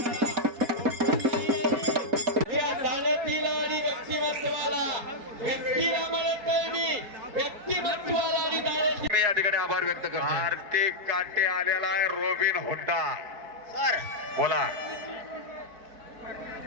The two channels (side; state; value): left; late; 4.2 ms